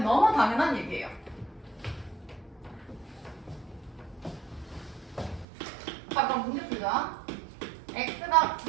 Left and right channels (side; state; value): left; drops out; at 5.5 s